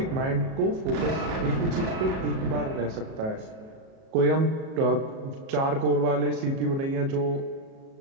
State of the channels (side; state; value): left; late; 37 ms